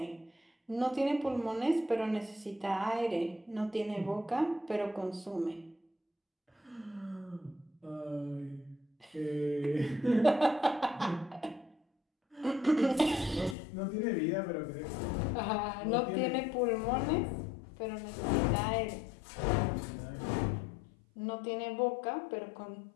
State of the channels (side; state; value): right; drops out; at 13.6 s